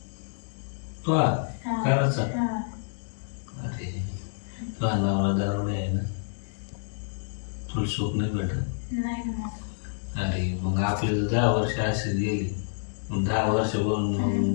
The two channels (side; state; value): right; silent; digital silence